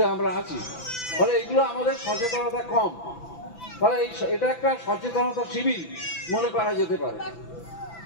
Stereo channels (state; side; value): late; right; 6.0 ms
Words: আমরা আছি। ফলে এইগুলো আমাদের সচেতনতা কম। ফলে এটা একটা সচেতনতা শিবির মনে করা যেতে পারে।